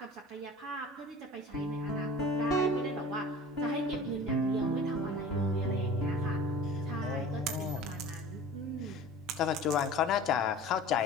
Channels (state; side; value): normal; both; correlation 0.41